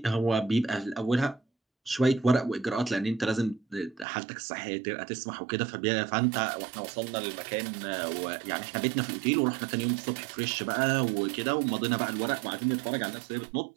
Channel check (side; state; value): left; drops out; at 4.0 s